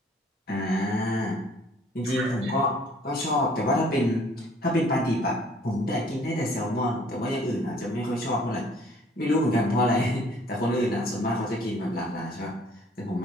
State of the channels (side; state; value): both; normal; correlation 0.57